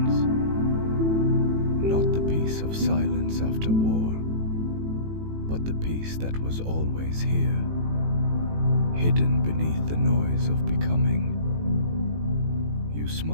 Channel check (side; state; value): left; late; 18 ms